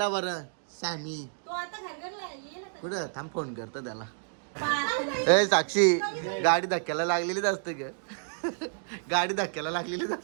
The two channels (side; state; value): left; silent; digital silence